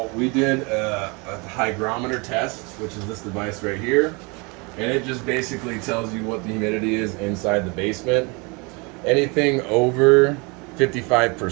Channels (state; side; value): quieter; left; 29.3 dB